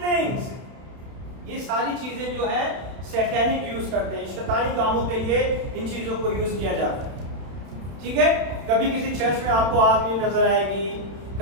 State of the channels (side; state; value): left; late; 31 ms